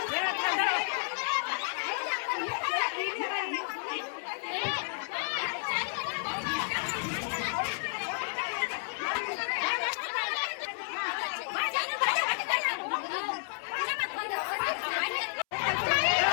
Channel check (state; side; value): silent; right; 57 dB below the other